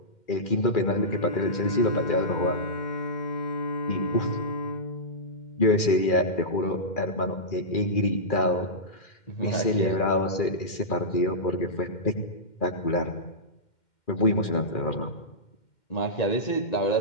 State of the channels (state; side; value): late; right; 2.1 ms